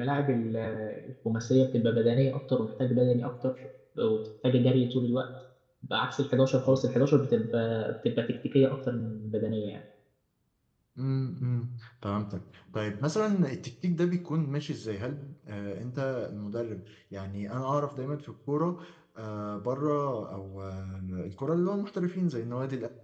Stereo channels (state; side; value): identical; both; correlation 1.00